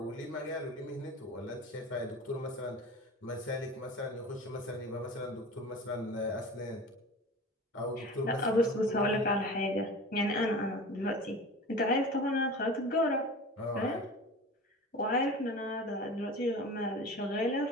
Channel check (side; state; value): both; normal; correlation 0.36